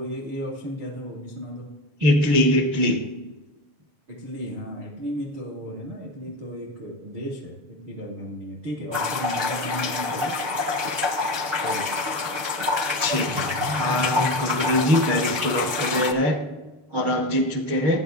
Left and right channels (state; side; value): late; left; 6.7 ms